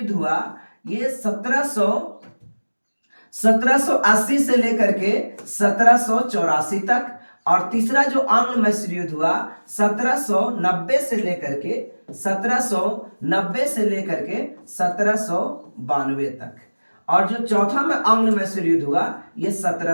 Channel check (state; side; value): inverted; both; correlation -1.00